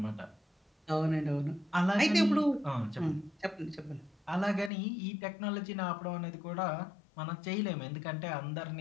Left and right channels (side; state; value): right; drops out; at 4.7 s